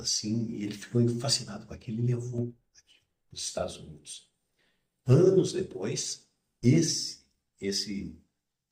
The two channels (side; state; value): both; identical; correlation 1.00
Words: assim, e ele ficou fascinado com aquilo e levou aquilo para os Estados Unidos. Anos depois, esse, esse